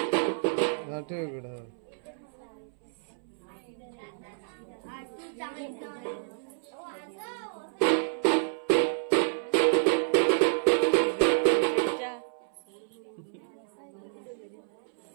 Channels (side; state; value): left; silent; 58 dB below the other